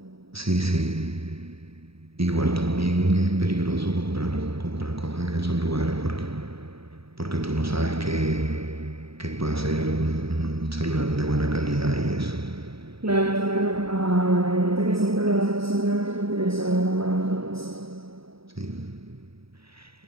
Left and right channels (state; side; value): late; left; 0.76 ms